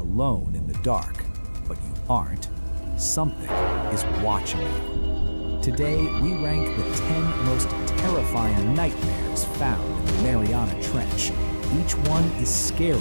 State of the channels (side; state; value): both; inverted; correlation -1.00